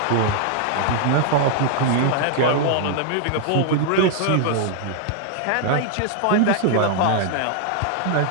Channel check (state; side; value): different; both; correlation 0.00